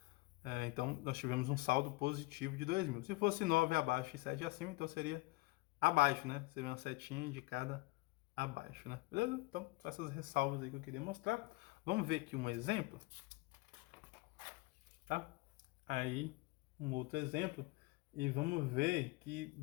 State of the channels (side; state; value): right; quieter; 23.5 dB